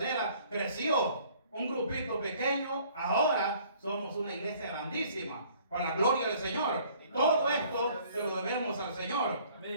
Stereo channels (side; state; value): both; inverted; correlation -0.57